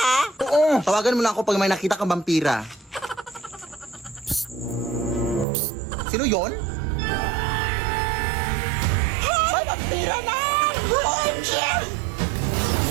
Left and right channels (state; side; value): drops out; left; at 5.5 s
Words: Oo. Tawagan mo lang ako pag may nakita kang vampira. Sino yon? May vampira na! OMG!